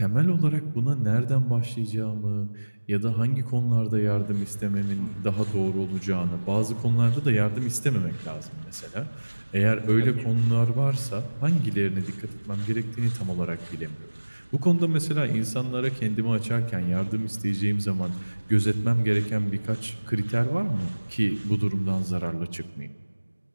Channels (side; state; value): both; inverted; correlation -1.00